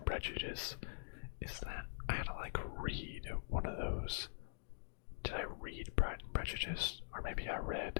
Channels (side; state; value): right; silent; digital silence